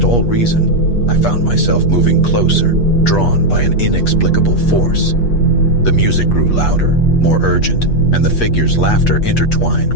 all reason, I found myself moving closer, drawn by an inexplicable force. The music grew louder, more urgent, and the figure's laughter intertwined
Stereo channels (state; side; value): late; right; 8.3 ms